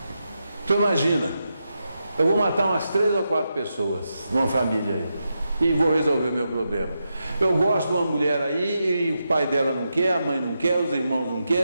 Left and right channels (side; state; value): both; inverted; correlation -0.86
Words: Tu imagina, eu vou matar umas 3 ou 4 pessoas numa família aí e vou resolver o meu problema. Eu gosto de uma mulher aí e o pai dela não quer, a mãe não quer, os irmãos não